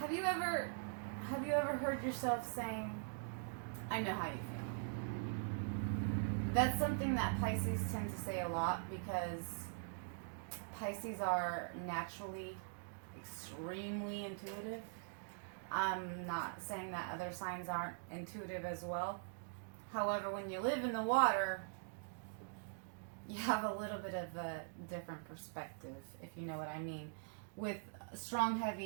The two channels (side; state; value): left; silent; digital silence